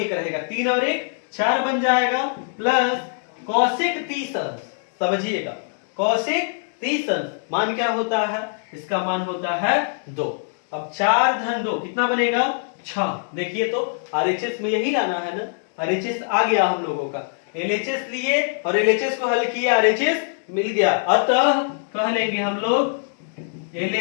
रहेगा, 3 और 1 4 बन जाएगा, प्लस cosec 30 अंश, समझिएगा cosec 30 अंश मान क्या होता है, इसका मान होता है 2। अब 4 धन 2 कितना बनेगा 6, देखिए तो RHS में यही लाना है ना, RHS आ गया हम लोगों का, LHS लिए और LHS को हल किया RHS मिल गया, अतः कह लेंगे हम लोग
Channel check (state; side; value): silent; right; digital silence